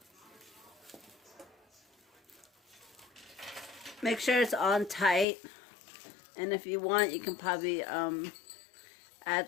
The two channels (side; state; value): right; drops out; at 5.2 s